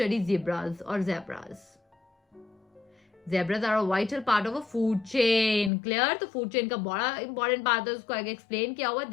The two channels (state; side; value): drops out; right; at 5.7 s